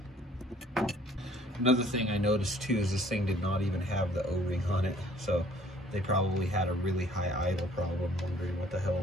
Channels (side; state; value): both; normal; correlation 0.57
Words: another thing I noticed too is this thing did not even have the O-ring on it, so they probably had a really high idle problem, wondering what the